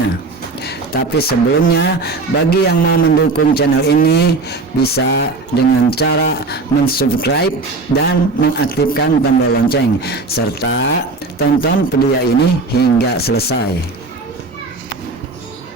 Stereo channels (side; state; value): left; quieter; 3.7 dB